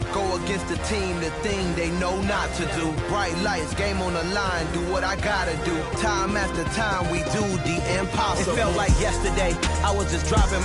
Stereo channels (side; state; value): both; identical; correlation 1.00